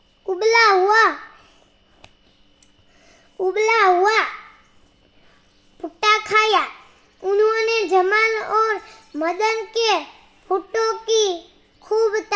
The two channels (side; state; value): both; identical; correlation 1.00